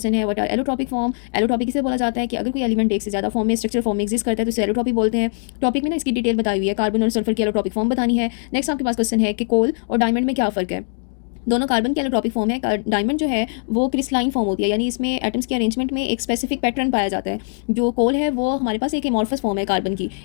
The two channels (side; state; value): right; silent; 60 dB below the other